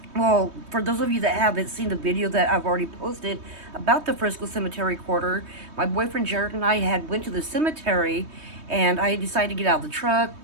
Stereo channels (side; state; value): left; late; 3.2 ms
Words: Well, for those of you that haven't seen the video that I've already posted about the Frisco Cemetery quarter, my boyfriend Jared and I had went to the cemetery and I decided to get out of the truck,